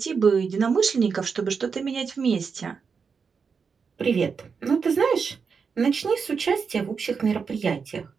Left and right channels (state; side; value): quieter; left; 5.7 dB